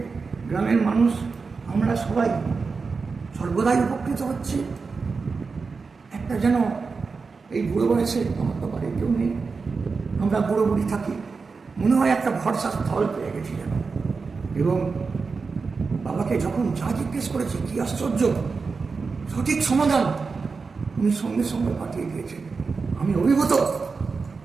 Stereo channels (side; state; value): left; quieter; 4.7 dB